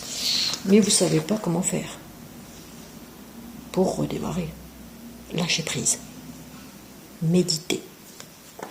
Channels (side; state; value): both; identical; correlation 1.00